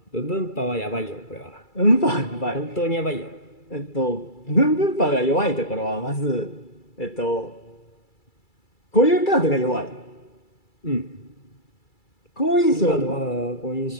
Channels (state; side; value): late; right; 2.3 ms